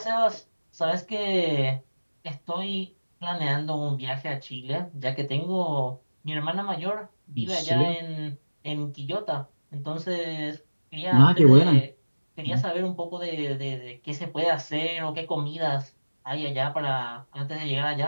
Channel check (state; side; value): inverted; both; correlation -1.00